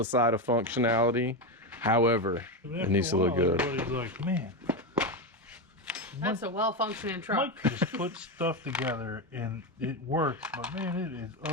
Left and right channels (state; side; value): normal; both; correlation 0.13